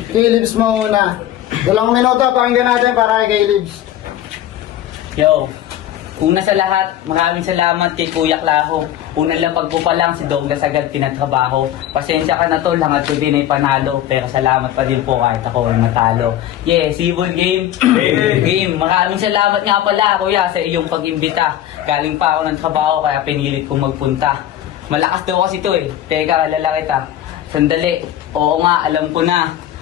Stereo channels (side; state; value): right; quieter; 12.1 dB